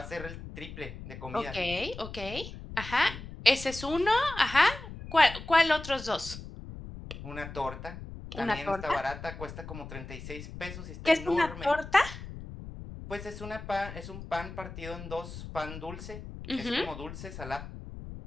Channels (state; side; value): noise; left; rumble, 11 dB below the sound